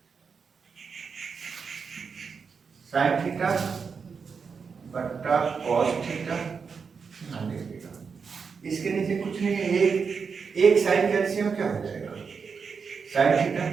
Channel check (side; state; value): left; quieter; 5.7 dB